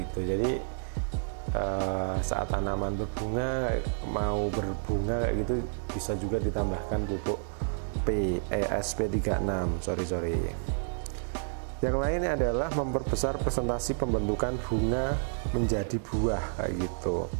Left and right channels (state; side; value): silent; left; digital silence